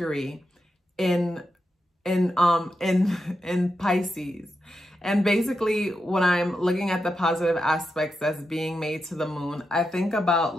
in Pisces. And basically, when I'm looking at the positive aspects that's being made to the moon, I think about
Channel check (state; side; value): normal; both; correlation 0.87